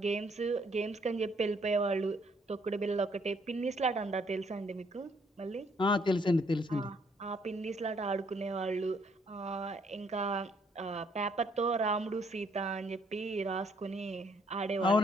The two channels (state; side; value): normal; both; correlation 0.68